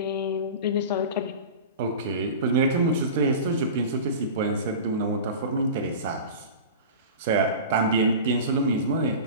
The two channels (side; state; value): both; inverted; correlation -0.32